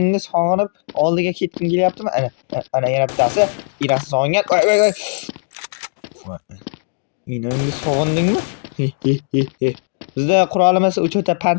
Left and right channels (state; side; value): silent; right; digital silence